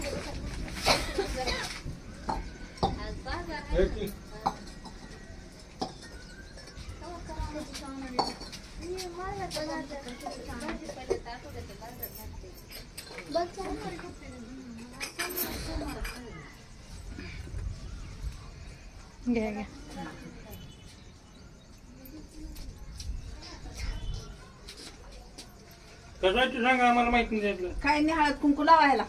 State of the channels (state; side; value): identical; both; correlation 1.00